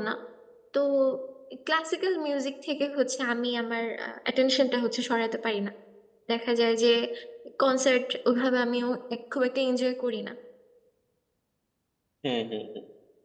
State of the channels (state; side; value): identical; both; correlation 1.00